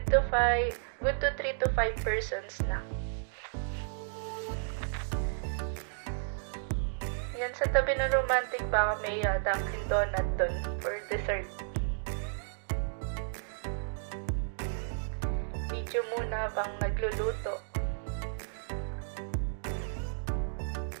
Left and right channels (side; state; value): left; silent; digital silence